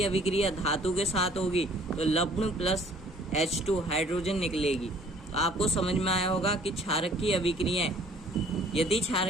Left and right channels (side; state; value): both; normal; correlation 0.56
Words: अभिक्रिया धातु के साथ होगी तो लवण प्लस H2 हाइड्रोजन निकलेगी। तो आपको समझ में आया होगा कि क्षारक की अभिक्रियाएं, यदि